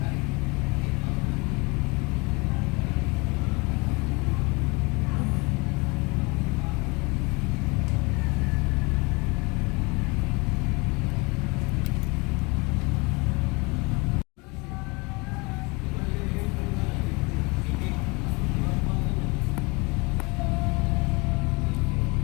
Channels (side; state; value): right; quieter; 27.5 dB